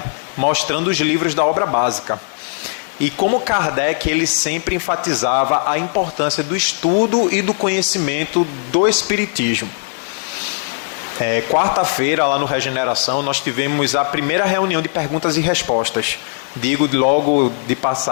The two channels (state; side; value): silent; right; digital silence